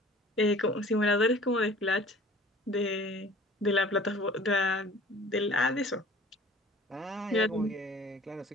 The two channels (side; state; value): both; normal; correlation 0.47